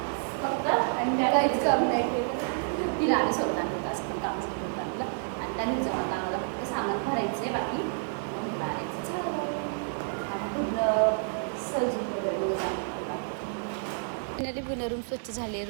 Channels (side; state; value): left; silent; 58 dB below the other